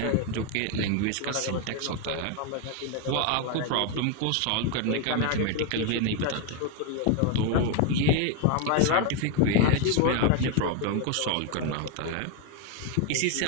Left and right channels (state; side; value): different; both; correlation 0.01